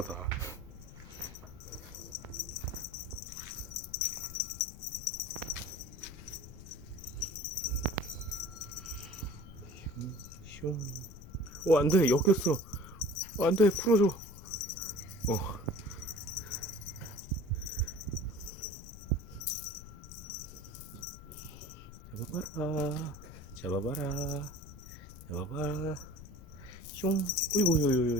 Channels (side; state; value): left; noise; rumble, 15 dB below the sound